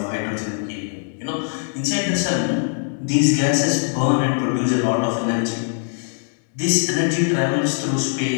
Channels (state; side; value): silent; right; 65 dB below the other